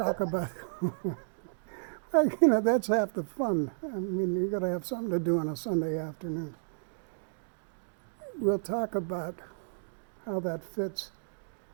about, well, you know, that's half the fun. I mean, you got to have something to do on a Sunday afternoon. We'll talk about how that fits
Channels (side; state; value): left; silent; digital silence